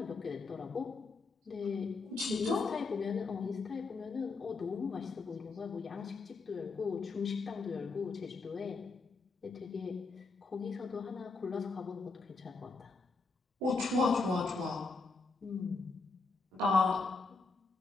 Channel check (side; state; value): right; quieter; 4.1 dB